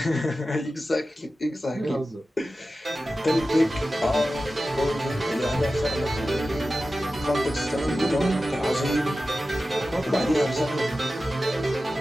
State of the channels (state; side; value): normal; both; correlation 0.94